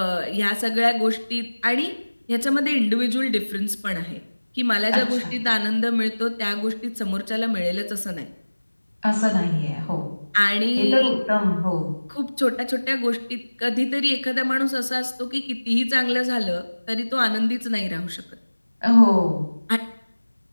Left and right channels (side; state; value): both; inverted; correlation -1.00